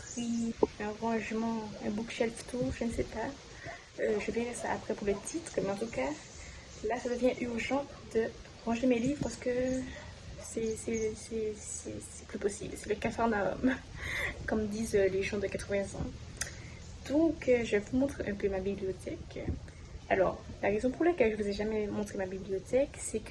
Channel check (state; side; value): identical; both; correlation 1.00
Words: un rangement, un bookshelf tour, je ne sais pas. Je verrai ça après pour le titre, mais en tout cas, là ça devient urgent de ranger mes livres parce que c'est plus possible. C'est le capharnaüm, comme disent les gens de 80 ans. Donc, je vous montre un peu ma bibliothèque. Alors, la raison pour laquelle je ne vous ai jamais montré ma bibliothèque, c'est